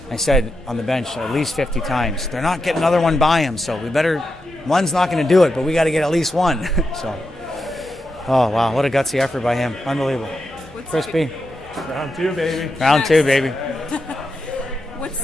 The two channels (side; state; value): both; normal; correlation 0.87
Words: I said on the bench at least 50 times, they're not getting another one by him, so one's not going to do it, but we got to get at least one. So, oh, wow, what a gutsy effort by him. Unbelievable. Crispy. Round two, baby. Round two, baby.